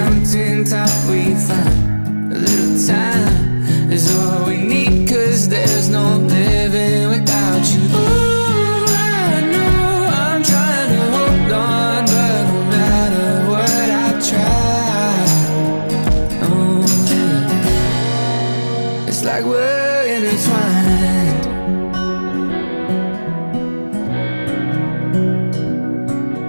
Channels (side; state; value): both; inverted; correlation -1.00